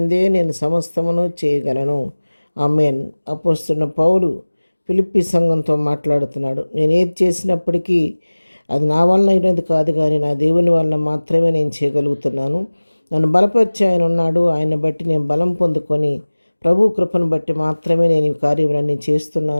నేను సమస్తమును చేయగలను. ఆమేన్. అపోస్తలుడైన పౌలు ఫిలిప్పీ సంఘంతో మాట్లాడుతున్నాడు. నేను ఏది చేసినప్పటికీ అది నా వలన అయినది కాదు, కానీ నా దేవుని వలన మాత్రమే నేను చేయగలుగుతున్నాను. నన్ను బలపరిచి ఆయన ఉన్నాడు. ఆయన బట్టి నేను బలం పొందుకొని ప్రభు కృపను బట్టి మాత్రమే నేను ఈ కార్యములన్నీ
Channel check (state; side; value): inverted; both; correlation -1.00